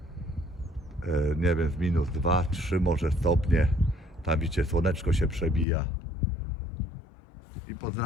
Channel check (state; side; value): drops out; right; at 5.7 s